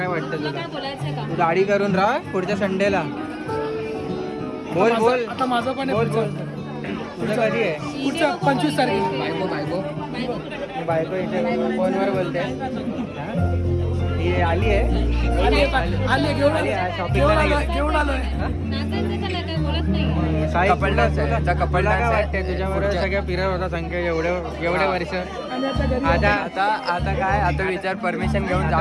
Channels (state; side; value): identical; both; correlation 1.00